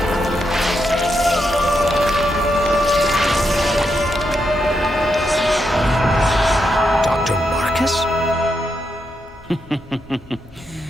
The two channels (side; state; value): both; normal; correlation 0.82